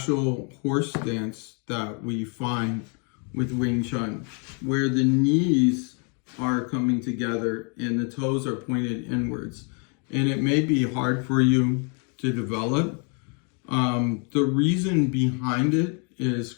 horse dance that we find with Wing Chun, where the knees are coming together and the toes are pointed inwards. And it may be hard for you to develop. The reason behind it is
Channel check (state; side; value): quieter; right; 37.5 dB